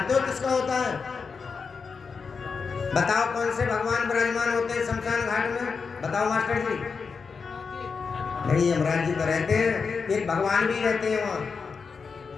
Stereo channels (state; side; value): quieter; right; 5.2 dB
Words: हो किसका होता है? बताओ कौन से भगवान विराजमान होते हैं शमशान घाट में? बताओ मास्टर जी। नहीं, यमराज जी तो रहते हैं, एक भगवान भी रहते हैं वहां,